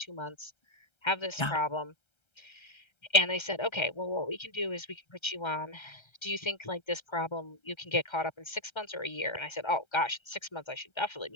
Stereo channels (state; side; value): late; right; 1.3 ms